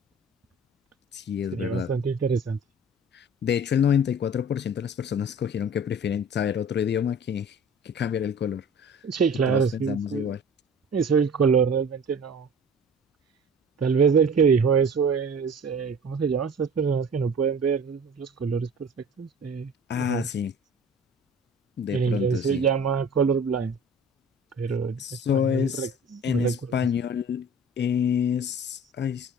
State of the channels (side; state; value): both; normal; correlation 0.42